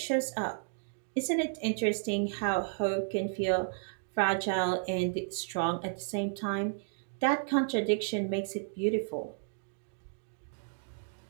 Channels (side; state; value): left; silent; digital silence